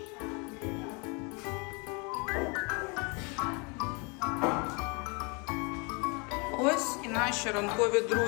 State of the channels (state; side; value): quieter; right; 31.5 dB